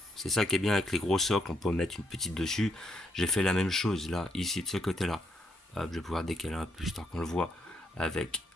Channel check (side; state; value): both; normal; correlation 0.75